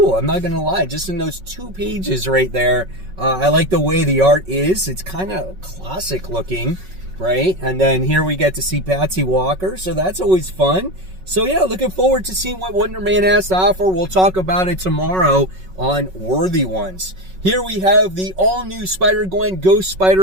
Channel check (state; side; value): late; left; 5.4 ms